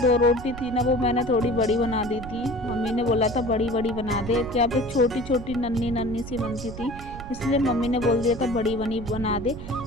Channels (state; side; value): noise; right; rumble, 12 dB below the sound